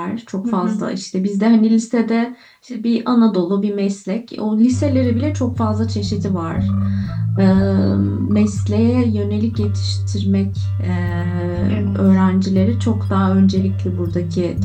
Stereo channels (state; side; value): identical; both; correlation 1.00